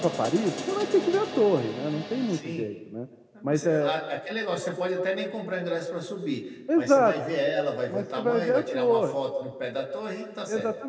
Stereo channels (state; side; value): identical; both; correlation 1.00